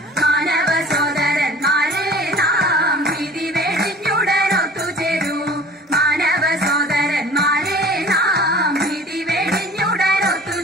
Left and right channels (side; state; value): both; normal; correlation 0.44